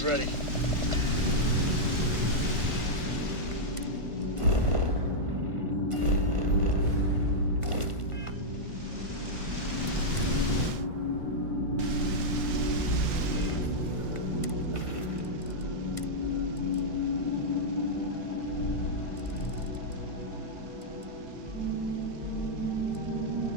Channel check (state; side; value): late; left; 1.5 ms